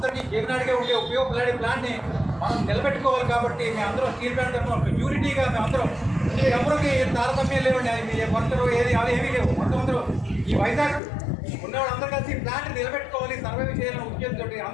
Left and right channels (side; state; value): right; drops out; at 11.0 s